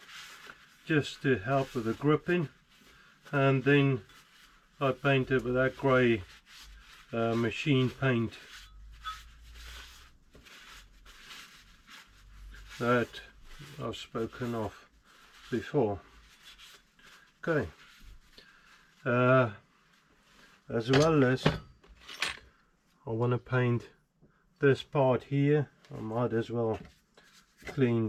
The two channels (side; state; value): both; identical; correlation 1.00